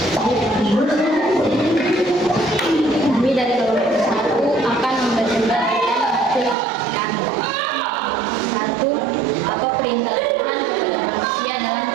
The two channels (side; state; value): left; drops out; at 6.6 s